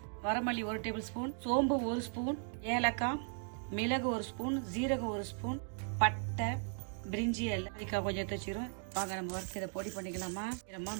வரமல்லி 1 டேபிள் ஸ்பூன், சோம்பு 1 ஸ்பூன், ஏலக்காய், மிளகு 1 ஸ்பூன், ஜீரகம் 1 ஸ்பூன், பட்டை, பிரிஞ்சி எல்லாம் அதுக்காக கொஞ்சம் எடுத்து வச்சுக்கிறோம். வாங்க நம்ம வறுத்து இதை பொடி பண்ணிக்கலாமா.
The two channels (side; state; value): left; silent; 53 dB below the other